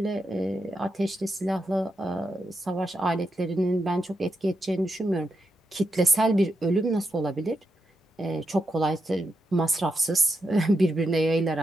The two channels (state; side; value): normal; both; correlation 0.84